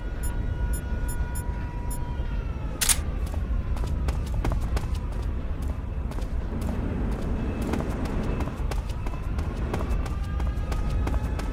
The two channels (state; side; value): identical; both; correlation 1.00